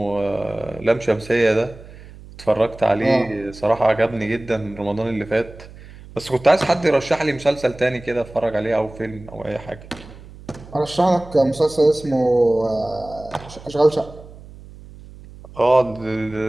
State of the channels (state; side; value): noise; right; hum, 18 dB below the sound